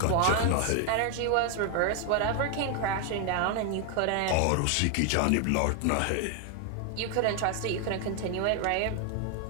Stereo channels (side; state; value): both; different; correlation 0.00